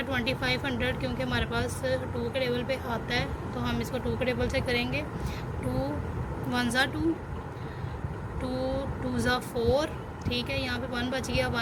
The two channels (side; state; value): both; identical; correlation 1.00